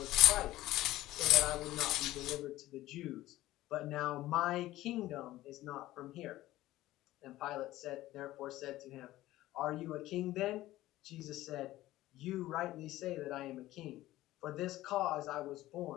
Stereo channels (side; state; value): right; quieter; 16.0 dB